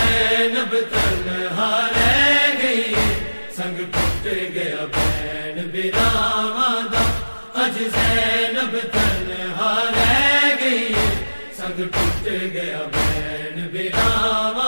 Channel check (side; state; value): both; inverted; correlation -1.00